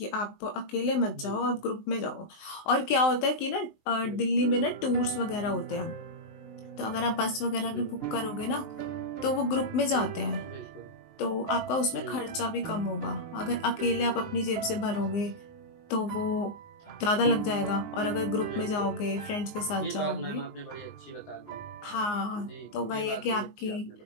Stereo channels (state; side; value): late; right; 19 ms